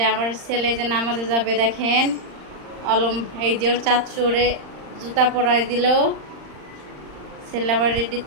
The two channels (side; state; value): left; late; 39 ms